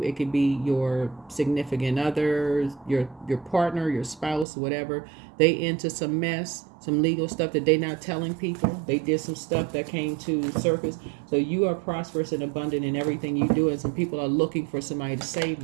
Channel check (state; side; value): drops out; left; at 4.5 s